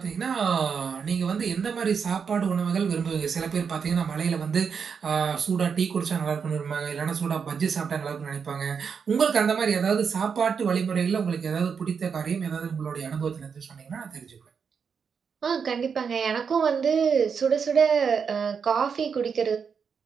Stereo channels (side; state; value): left; quieter; 6.3 dB